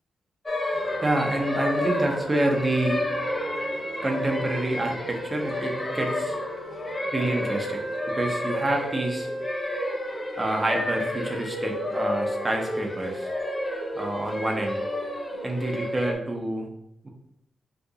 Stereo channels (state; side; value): normal; both; correlation 0.88